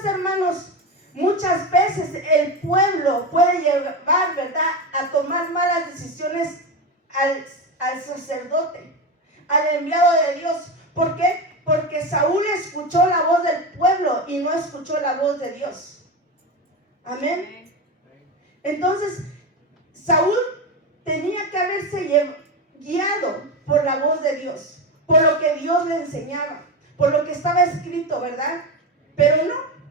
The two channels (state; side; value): normal; both; correlation 0.18